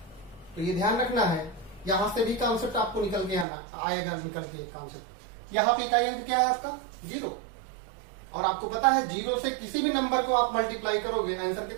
तो ये ध्यान रखना है, यहां से भी कॉन्सेप्ट आपको निकल के आएगा निकल के कॉन्सेप्ट। यहां पे इकाई अंक क्या है आपका, 0। और आपको पता है 0 से किसी भी नंबर को आप मल्टीप्लाई करोगे, आंसर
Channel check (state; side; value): drops out; left; at 3.5 s